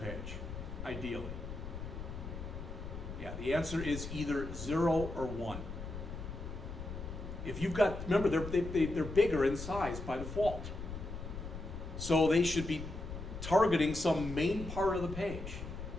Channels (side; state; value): left; noise; rumble, 8 dB below the sound